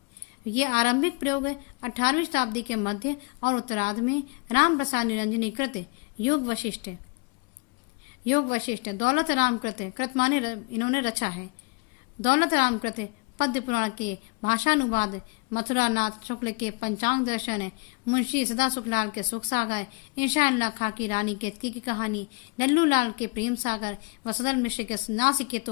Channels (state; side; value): quieter; right; 30.3 dB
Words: ये आरंभिक प्रयोग 18वीं शताब्दी के मध्य और उत्तरार्ध में राम प्रसाद निरंजनी कृत योग वशिष्ठ दौलत राम कृत माने इन्होंने रचा है। दौलत राम कृत पद्य पुराण के भाषानुवाद, मथुरा नाथ शुक्ल के पंचांग दर्शन, मुंशी सदा सुखलाल के सुख सागर, इंशाअल्लाह खां की रानी केतकी की कहानी, लल्लू लाल के प्रेम सागर व सदर मिश्र के